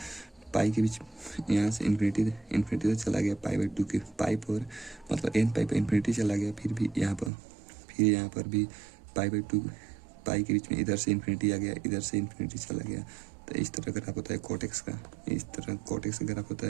पाई के बीच यहाँ से इन्फिनिटी तो चला गया पाई/2 के पाई पर, मतलब n पाई पर इन्फिनिटी चला गया। फिर यहाँ पर भी पाई/2 पाई के बीच में इधर से इन्फिनिटी आ गया, इधर से इन्फिनिटी चला गया। तो इस तरह ग्राफ होता है cot x का, इस तरह cot x का ग्राफ होता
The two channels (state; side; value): drops out; left; at 7.3 s